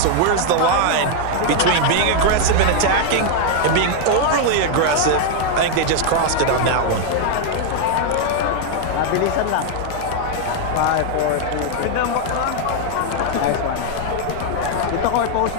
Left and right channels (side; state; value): both; different; correlation 0.00